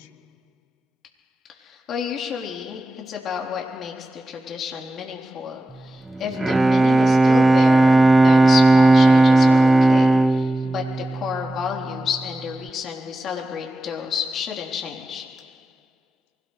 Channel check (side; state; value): both; normal; correlation 0.94